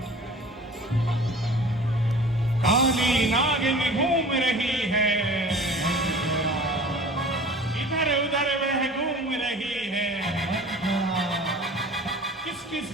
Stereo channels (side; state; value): both; normal; correlation 0.43